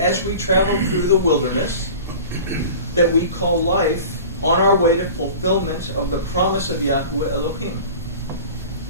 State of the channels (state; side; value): inverted; both; correlation -0.39